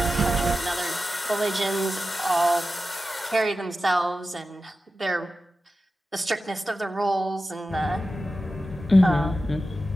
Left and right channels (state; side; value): normal; both; correlation 0.93